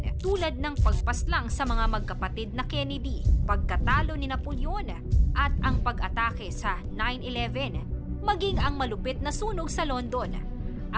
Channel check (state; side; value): identical; both; correlation 1.00